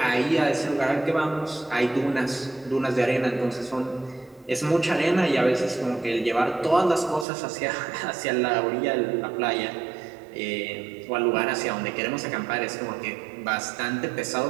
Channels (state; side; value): drops out; left; at 7.2 s